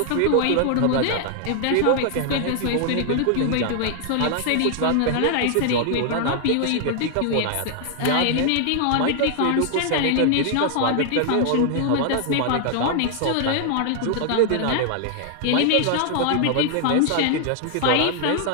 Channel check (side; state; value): both; different; correlation 0.00